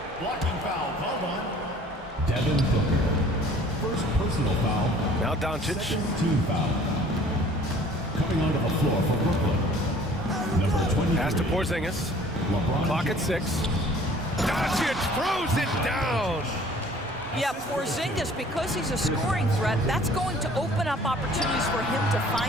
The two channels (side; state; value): both; normal; correlation 0.52